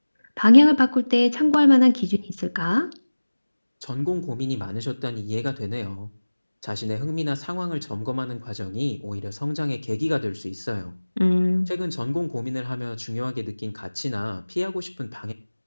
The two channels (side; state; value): both; inverted; correlation -1.00